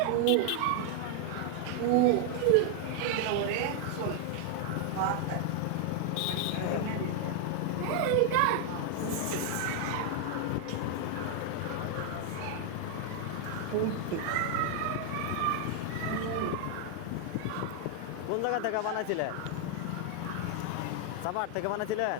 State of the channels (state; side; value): different; both; correlation 0.00